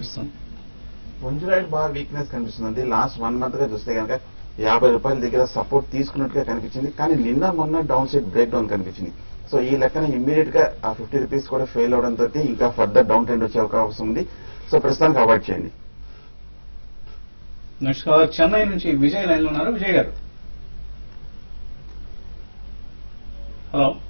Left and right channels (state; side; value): inverted; both; correlation -1.00